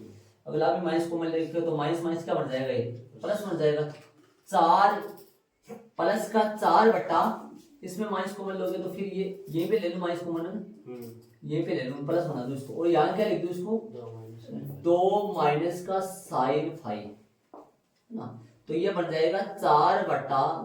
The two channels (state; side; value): identical; both; correlation 1.00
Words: अगला में माइनस कॉमन ले रखे, तो माइनस माइनस क्या बन जाएगा? ये प्लस बन जाएगा। 4 प्लस का 4 बटा, इसमें माइनस कॉमन लोगे तो फिर ये पे ले लो माइनस कॉमन है ना, ये पे ले लो, प्लस बना दो इसको। और यहाँ क्या लिख दो इसको? 2 माइनस का साइन फाई ना, तो ये बन जाएगा 4 बटा